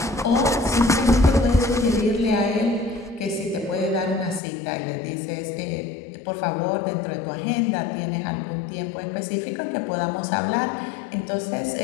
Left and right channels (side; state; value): right; drops out; at 4.4 s